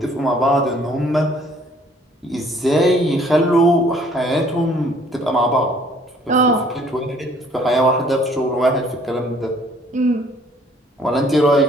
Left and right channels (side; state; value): both; normal; correlation 0.59